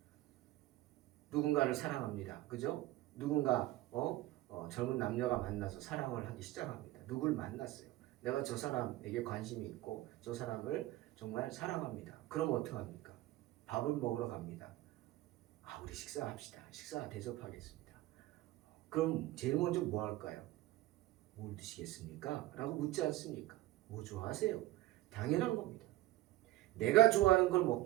누군가를 사랑합니다. 그죠? 누군가 젊은 남녀가 만나서 사랑을 하기 시작합니다. 누굴 만났어요. 내가 저 사람에게 관심이 있고 저 사람을 정말 사랑합니다. 그럼 어떡합니까? 밥을 먹으러 갑니다. 우리 식사합시다. 식사 대접하겠습니다. 그럼 제일 먼저 뭐 할까요? 뭘 드시겠습니까? 라고 묻지 않습니까? 뭐 좋아하세요? 당연한 겁니다. 내가 좋아하는 걸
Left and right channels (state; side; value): quieter; left; 16.4 dB